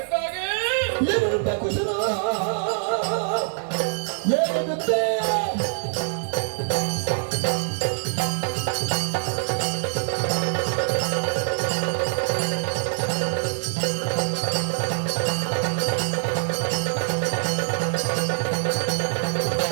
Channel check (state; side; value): silent; left; 61 dB below the other